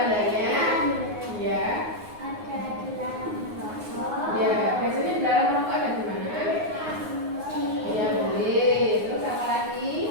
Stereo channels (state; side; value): late; left; 9.5 ms